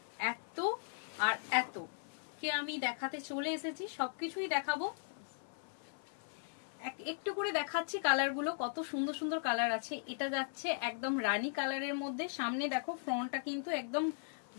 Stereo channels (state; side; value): silent; right; 52 dB below the other